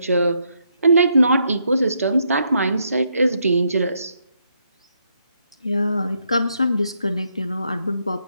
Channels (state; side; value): inverted; both; correlation -0.77